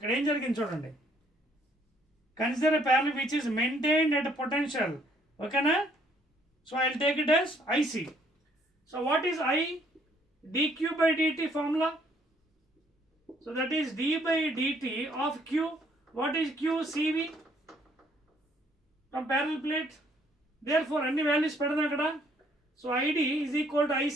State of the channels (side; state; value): both; normal; correlation 0.65